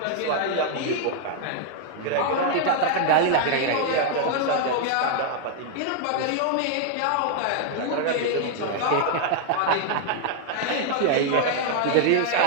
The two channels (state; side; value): different; both; correlation 0.00